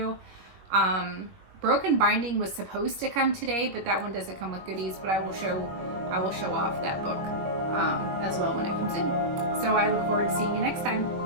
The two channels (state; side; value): late; left; 21 ms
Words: Broken Binding was supposed to come today, but that one doesn't come with goodies, but I will show off that book as well when it comes in. So I look forward to seeing you next time.